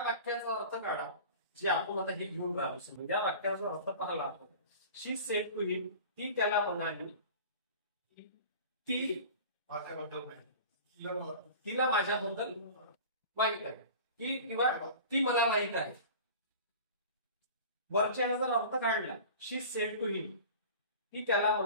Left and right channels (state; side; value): inverted; both; correlation -0.38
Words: वाक्याचा अर्थ काढा जे आपण आता हे घेऊन राहिलो. समजा या वाक्याचा अर्थ पाहिला आपण. शी सेड टू हिम, ती त्याला म्हणाली ती माझ्याबद्दल माहिती. तिला माझ्याबद्दल माहित आहे की किंवा ती मला माहित आहे. वरच्याने जर अर्थ काढला शी सेड टू हिम, ती त्याला